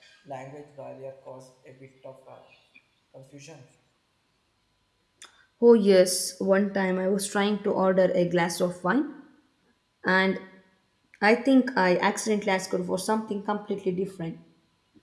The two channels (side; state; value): both; identical; correlation 1.00